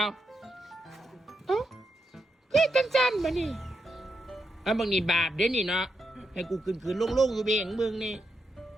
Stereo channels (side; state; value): both; normal; correlation 0.85